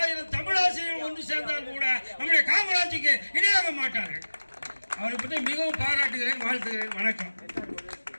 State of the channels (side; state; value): both; inverted; correlation -1.00